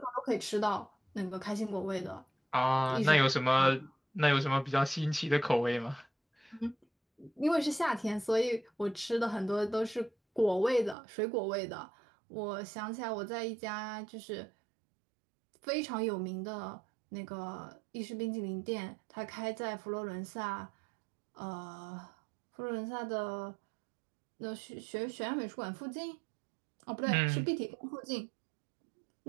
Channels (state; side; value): drops out; left; at 11.0 s